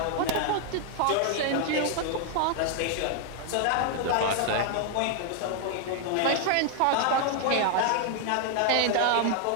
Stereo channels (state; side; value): different; both; correlation 0.00